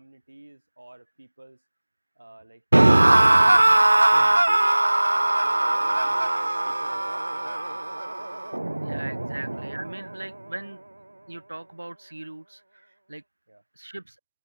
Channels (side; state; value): both; inverted; correlation -1.00